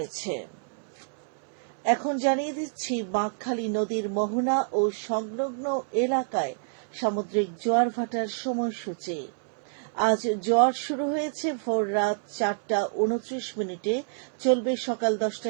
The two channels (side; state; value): left; silent; 59 dB below the other